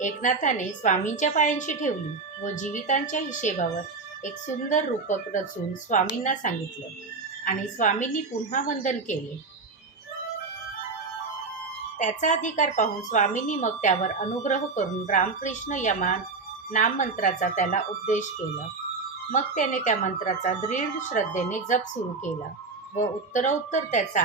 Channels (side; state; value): left; quieter; 4.2 dB